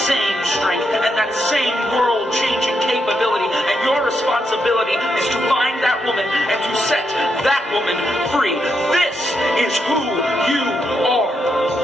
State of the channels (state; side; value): normal; both; correlation 0.81